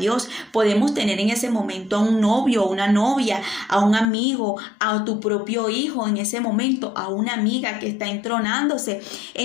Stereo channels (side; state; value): right; drops out; at 4.0 s